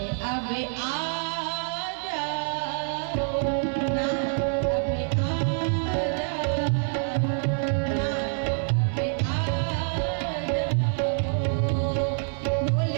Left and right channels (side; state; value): left; silent; 61 dB below the other